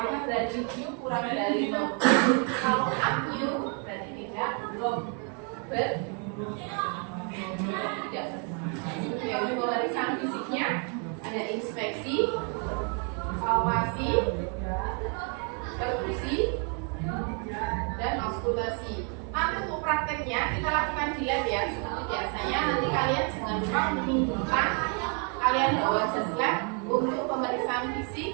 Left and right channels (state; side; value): quieter; left; 39.1 dB